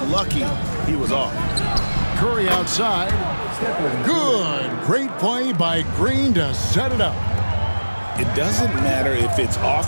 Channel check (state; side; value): inverted; both; correlation -1.00